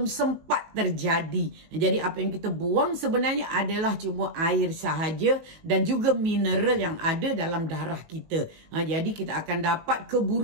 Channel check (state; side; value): late; left; 19 ms